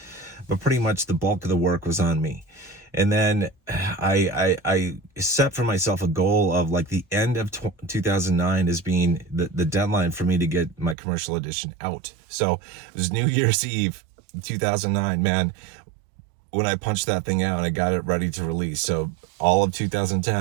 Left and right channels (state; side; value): drops out; left; at 11.0 s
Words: But pretty much the bulk of the work was on me. And then I set for myself a goal of like the end of 2009 as being the deadline for me to get my commercial edition out. So it was New Year's Eve, 2009, man, when I punched that thing out and I got it ready to release. So all of